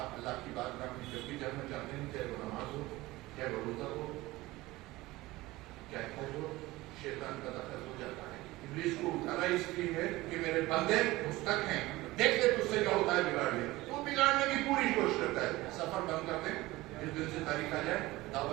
اللہ کی بارگاہ میں جب بھی جانا چاہتے ہیں، چاہے وہ نماز ہو، چاہے وہ روزہ ہو، چاہے حج ہو، شیطان کا دخل ہو جاتا ہے۔ ابلیس کو اٹھانا اس لیے ہے کہ میرے بندے مستق ہیں، دیکھ لے تجھ سے کیا ہوتا ہے، بگاڑ لے، تو بگاڑنے کی پوری کوشش کرتا ہے. سفر بند کر دیں, جس دن سے تاریخ آ جائے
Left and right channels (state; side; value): quieter; left; 19.2 dB